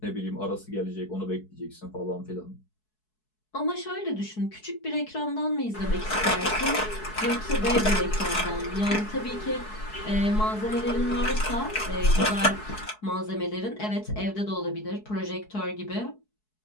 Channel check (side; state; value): right; late; 4.7 ms